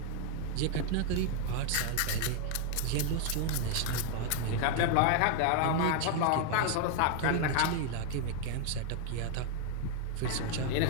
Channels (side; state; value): both; different; correlation 0.00